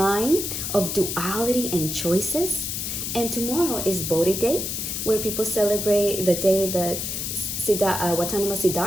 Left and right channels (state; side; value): noise; left; hiss, 3 dB below the sound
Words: of duality and choices. And tomorrow is Bohdi Day, where people celebrate the day that Watanima